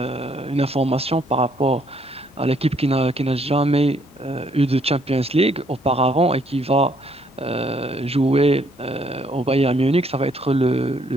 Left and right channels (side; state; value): both; normal; correlation 0.67